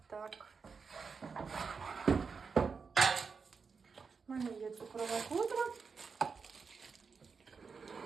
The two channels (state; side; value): quieter; left; 5.3 dB